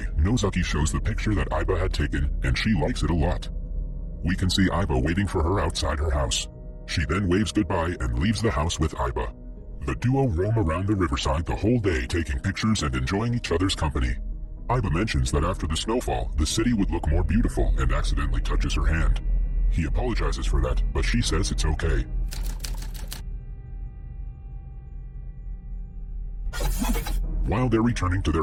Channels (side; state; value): both; identical; correlation 1.00